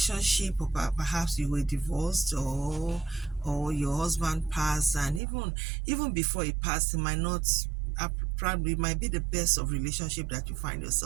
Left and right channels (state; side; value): drops out; left; at 5.2 s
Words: or perhaps you were divorced, or your husband passed, and even before he passed, it might not probably might be the best of relationship that you find